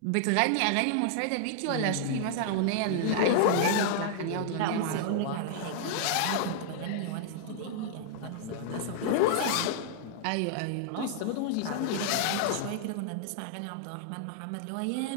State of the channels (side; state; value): both; different; correlation -0.01